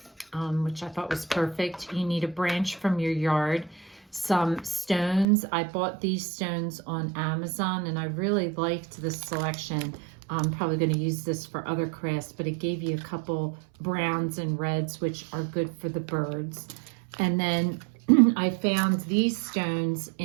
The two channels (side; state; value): left; drops out; at 5.2 s